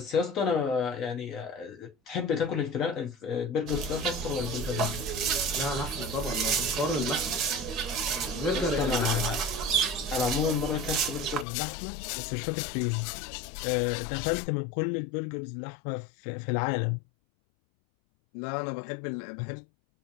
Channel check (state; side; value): drops out; right; at 11.5 s